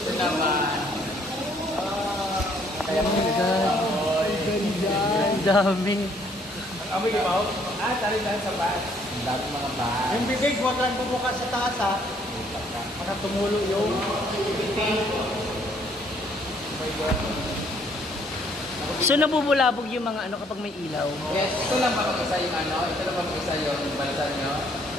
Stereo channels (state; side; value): normal; both; correlation 0.65